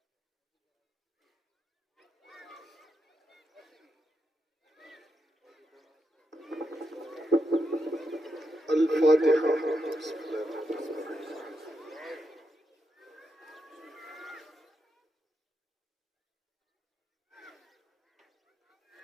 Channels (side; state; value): both; normal; correlation 0.84